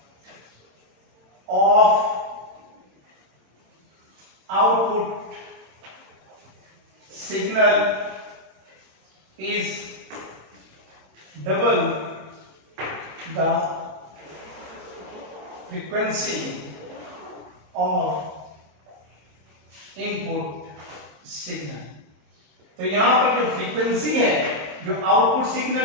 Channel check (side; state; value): left; late; 26 ms